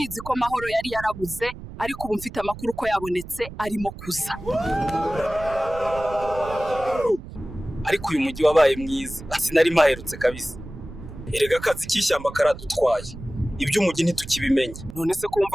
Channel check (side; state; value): right; noise; rumble, 13 dB below the sound